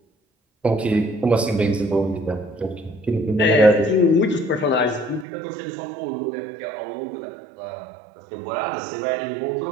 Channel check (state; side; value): drops out; left; at 5.2 s